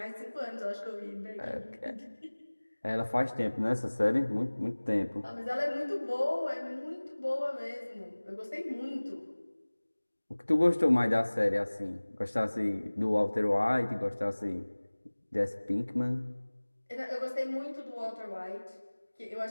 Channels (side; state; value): both; inverted; correlation -1.00